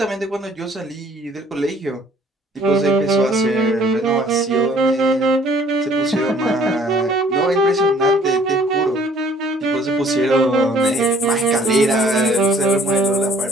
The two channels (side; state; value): both; normal; correlation 0.57